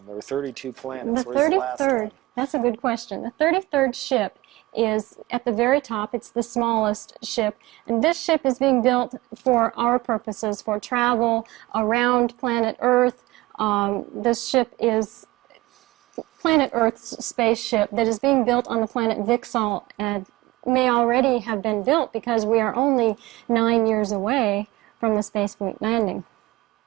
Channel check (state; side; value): quieter; left; 19.6 dB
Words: There were 32 planets. The Where's 33rd, the last one? that's a good question. The 33rd ship is at the very top. It's the smallest ship, and this ship is being built for our purposes, for travel around planet Earth. This ship is planet Earth's spaceship that is being built on the planet Vixal and may already have been built because we are only 9 years away from the space fleet landing.